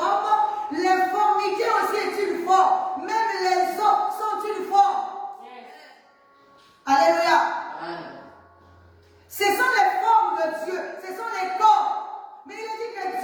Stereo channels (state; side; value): identical; both; correlation 1.00